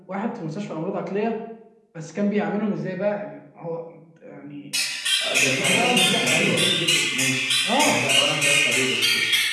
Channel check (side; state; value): both; identical; correlation 1.00